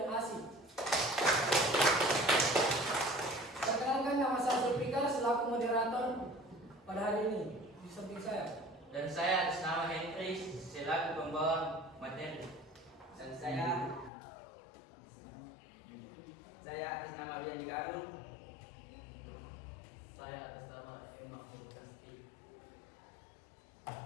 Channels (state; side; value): drops out; right; at 14.1 s